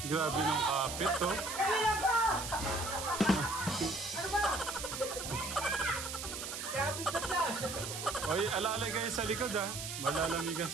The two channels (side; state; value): right; noise; hiss, 6 dB below the sound